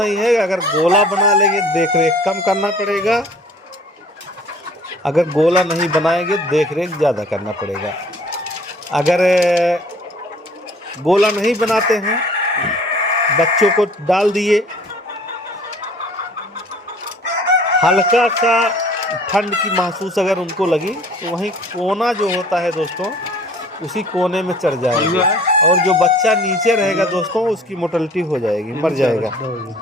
है। अगर गोला बना लेंगे देख रेख कम करना पड़ेगा, अगर गोला नहीं बनाएंगे देख रेख ज़्यादा करना पड़ेगा। अगर गोला नहीं बनाते हैं, बच्चों को डाल दिए, हल्का सा ठंड की महसूस अगर उनको लगी तो वहीं कोना जो होता है दोस्तों, उसी कोने में चढ़ जाएगा, और जो बच्चा नीचे रहेगा दोस्तों उसकी मोर्टेलिटी हो जाएगी, मर जाएगा।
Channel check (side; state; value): both; normal; correlation 0.51